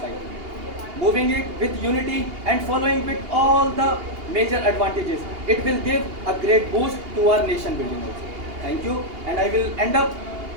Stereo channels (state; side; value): late; left; 2.8 ms